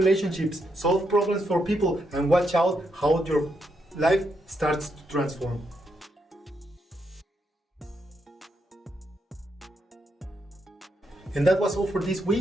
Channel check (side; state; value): both; normal; correlation 0.80